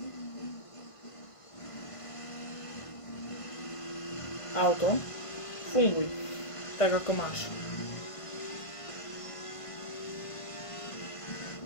Auto, funguj, tak ako máš.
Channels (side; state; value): right; late; 1.5 ms